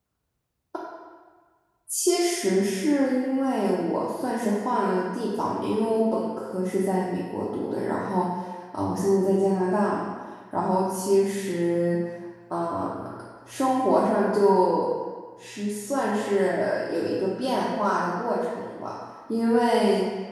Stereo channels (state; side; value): identical; both; correlation 1.00